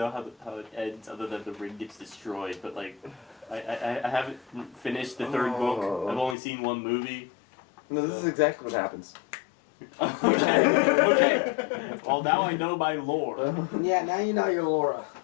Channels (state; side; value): drops out; right; at 6.4 s